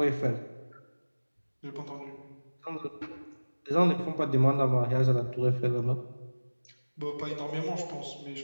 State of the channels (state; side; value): inverted; both; correlation -1.00